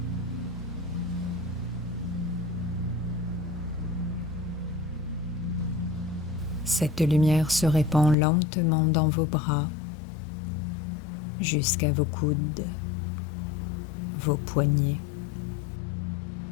Cette lumière se répand lentement dans vos bras, jusqu'à vos coudes, vos poignets.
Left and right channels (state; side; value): drops out; right; at 8.2 s